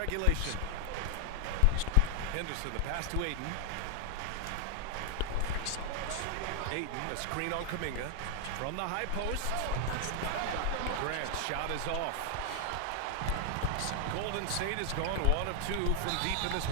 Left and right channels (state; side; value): different; both; correlation 0.00